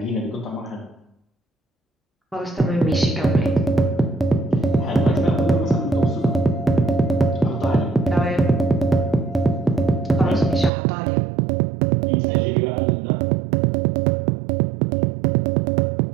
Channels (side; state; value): left; drops out; at 10.7 s